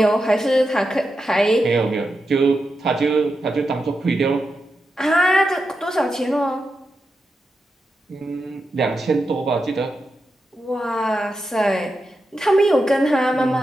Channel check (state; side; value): normal; both; correlation 0.88